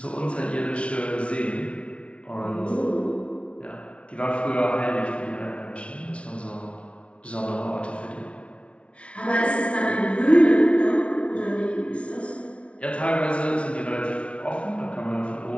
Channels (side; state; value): right; late; 0.061 ms